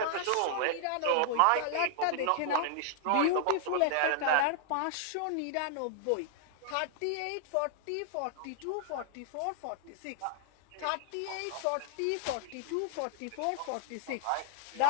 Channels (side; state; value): both; different; correlation -0.01